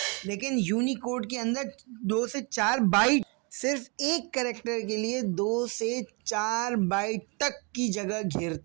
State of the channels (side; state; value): left; quieter; 32.4 dB